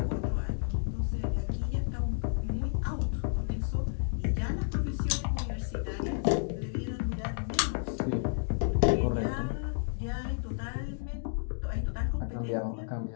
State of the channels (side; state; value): right; silent; digital silence